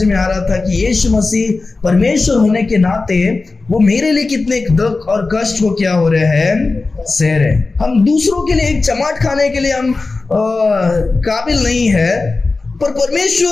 में आ रहा था कि यीशु मसीह परमेश्वर होने के नाते वो मेरे लिए कितने दुख और कष्ट को क्या हो रहे हैं, सह रहे। हम दूसरों के लिए एक चमाट खाने के लिए हम काबिल नहीं है, पर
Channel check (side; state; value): right; quieter; 3.7 dB